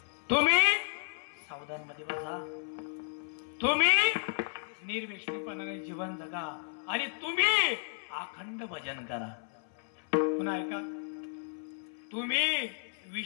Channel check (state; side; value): silent; right; 56 dB below the other